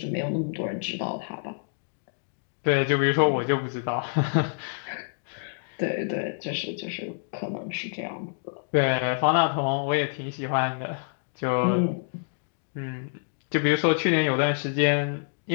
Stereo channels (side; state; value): right; silent; digital silence